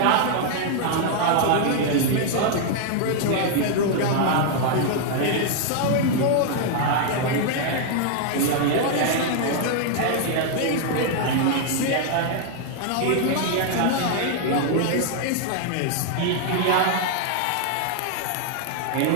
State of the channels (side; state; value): both; different; correlation 0.00